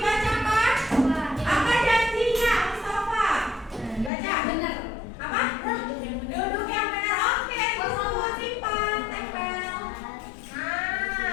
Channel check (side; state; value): right; drops out; at 4.1 s